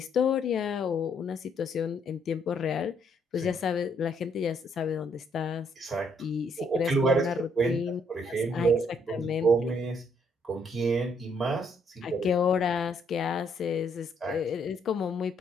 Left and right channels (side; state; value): both; normal; correlation 0.70